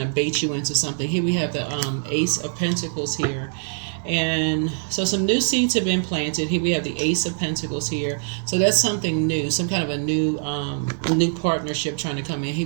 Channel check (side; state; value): left; silent; digital silence